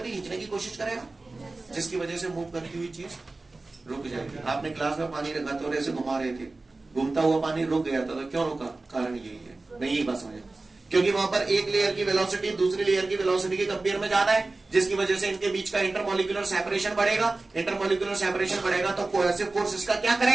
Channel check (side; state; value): left; quieter; 3.3 dB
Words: ही खींचने की कोशिश करेगा, जिसकी वजह से मूव करती हुई चीज रुक जाएगी। आपने ग्लास में पानी रखा था और ऐसे घुमा रहे थे, घूमता हुआ पानी रुक गया था, तो क्यों रुका? कारण यही है। नहीं, यही बात समझे, क्योंकि वहां पर एक लेयर की वेलोसिटी दूसरी लेयर की वेलोसिटी के कंपेयर में ज्यादा है, जिसकी वजह से इनके बीच का इंटरमॉलिक्यूलर सेपरेशन बढ़ेगा। इंटरमॉलिक्यूलर सेपरेशन बढ़ेगा तो कोहेसिव फोर्स इसका क्या